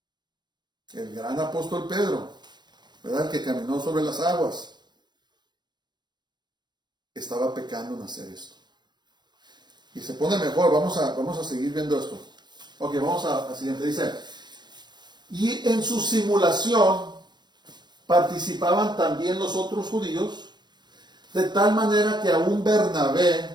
El gran apóstol Pedro, ¿verdad? El que caminó sobre las aguas, estaba pecando en hacer esto. Y se pone mejor, vamos a seguir viendo esto. Ok, vamos a siguiente. Dice, y en su simulación participaban también los otros judíos, de tal manera que aún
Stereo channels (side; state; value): left; late; 0.21 ms